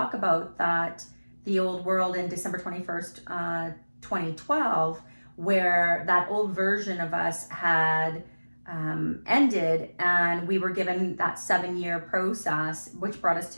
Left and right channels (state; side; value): inverted; both; correlation -1.00